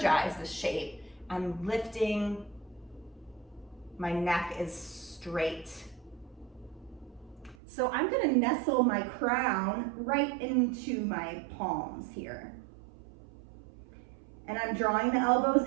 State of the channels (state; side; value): drops out; left; at 7.6 s